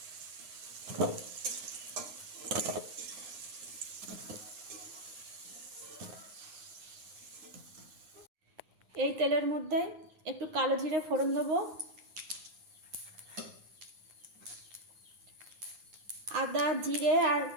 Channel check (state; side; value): late; left; 9.6 ms